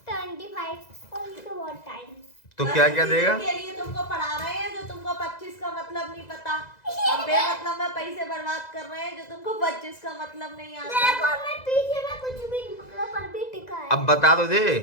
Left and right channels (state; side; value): late; right; 2.0 ms